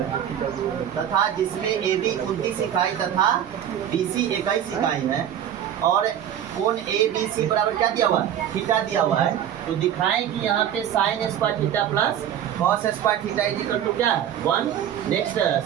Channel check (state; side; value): quieter; left; 10.1 dB